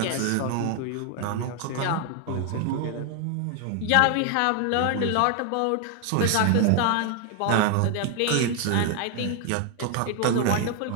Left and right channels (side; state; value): both; different; correlation 0.00